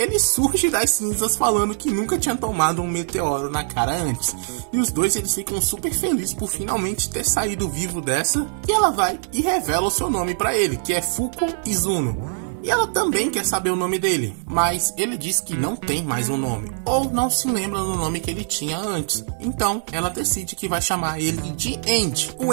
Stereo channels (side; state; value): left; silent; 64 dB below the other